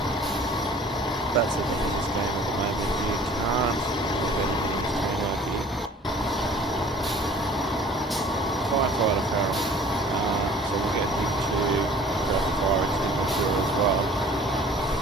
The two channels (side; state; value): both; normal; correlation 0.50